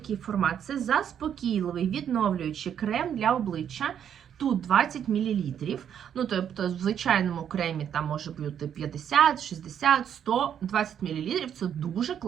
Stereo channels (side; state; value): left; quieter; 9.0 dB